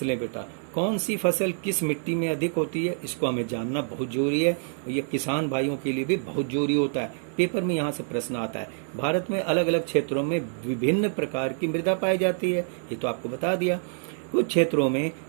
बेटा, कौन सी फसल किस मिट्टी में अधिक होती है, इसको हमें जानना बहुत जरूरी है। ये किसान भाइयों के लिए भी बहुत जरूरी होता है, पेपर में यहाँ से प्रश्न आता है। भारत में अलग अलग क्षेत्रों में विभिन्न प्रकार की मृदा पाई जाती है, ये तो आपको बता दिया। कुछ क्षेत्रों में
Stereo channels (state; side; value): silent; left; 60 dB below the other